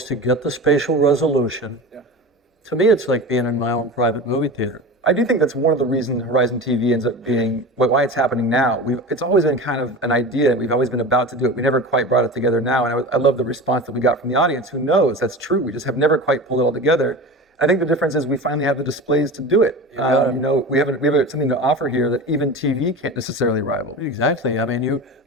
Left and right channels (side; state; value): both; normal; correlation 0.31